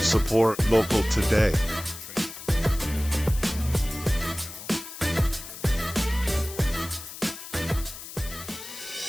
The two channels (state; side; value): noise; left; hiss, 12 dB below the sound